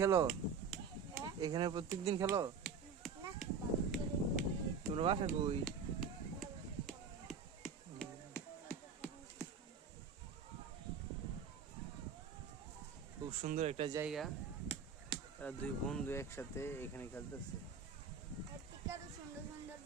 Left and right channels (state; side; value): quieter; left; 5.7 dB